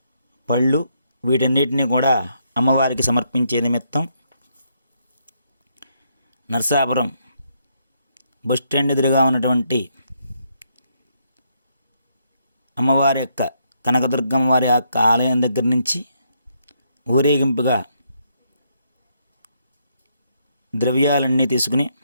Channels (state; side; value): inverted; both; correlation -0.75